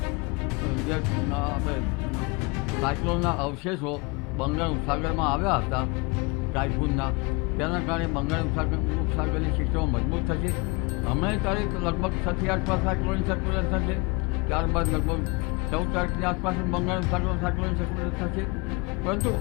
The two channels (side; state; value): right; quieter; 27.2 dB